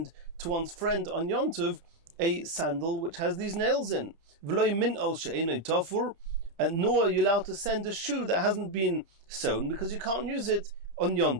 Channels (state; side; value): late; left; 30 ms